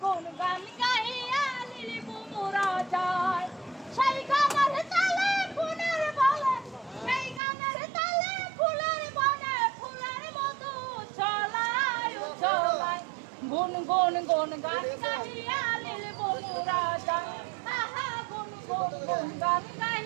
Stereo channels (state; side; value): drops out; left; at 7.4 s